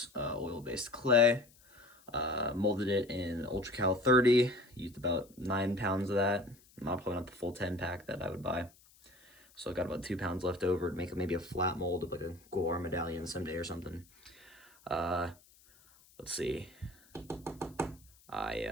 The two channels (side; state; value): left; noise; hiss, 28 dB below the sound